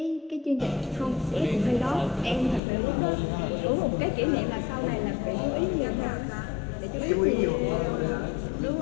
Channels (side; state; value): right; drops out; at 2.6 s